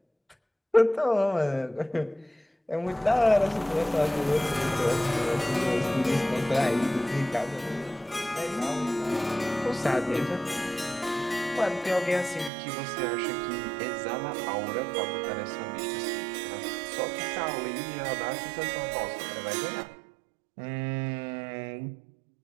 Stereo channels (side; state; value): left; drops out; at 12.5 s